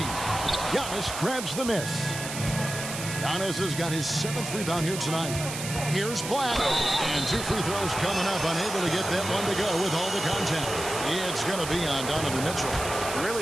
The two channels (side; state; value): right; noise; hiss, 7 dB below the sound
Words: Giannis grabs the miss. Giannis has got his 7th rebound here tonight. Here's Black. And 2 free throws coming up. Unable to get that one to go with all the contact. It's going to be on Donovan Mitchell.